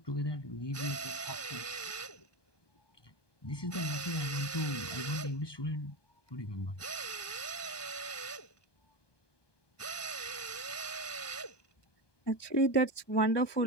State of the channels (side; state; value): right; late; 1.2 ms